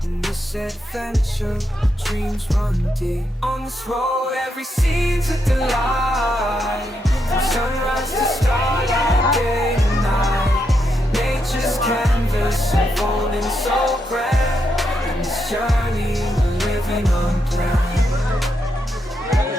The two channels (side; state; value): both; normal; correlation 0.81